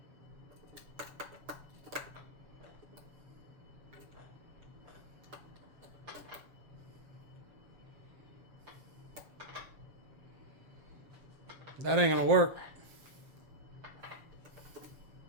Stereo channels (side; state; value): left; late; 7.5 ms